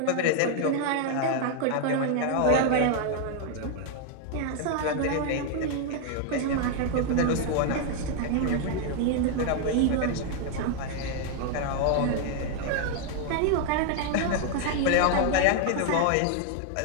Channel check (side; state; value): both; different; correlation 0.00